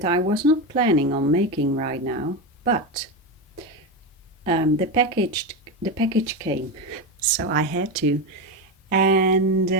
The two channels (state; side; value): normal; both; correlation 0.15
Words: I was not planning on making right now, but the package came, so I had to.